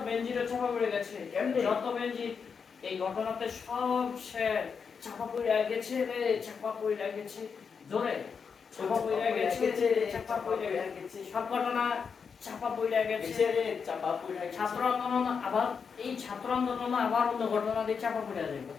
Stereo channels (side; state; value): right; quieter; 6.0 dB